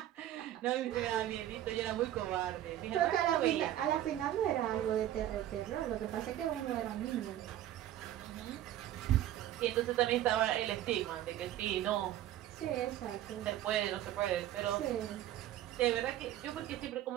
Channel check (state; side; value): quieter; left; 12.7 dB